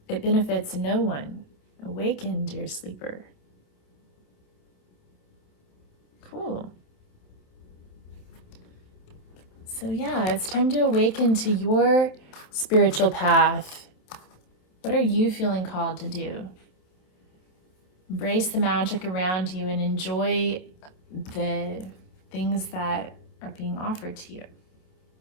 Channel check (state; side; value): late; right; 28 ms